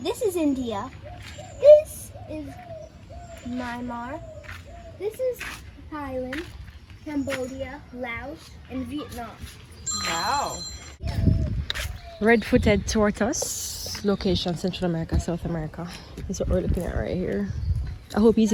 India. This is Myanmar. This is Thailand, Cambodia, Laos, and Vietnam. Wow. Red-footed tortoise, location Central America, South America. That's what we're looking at right here. I hope he's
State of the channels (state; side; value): identical; both; correlation 1.00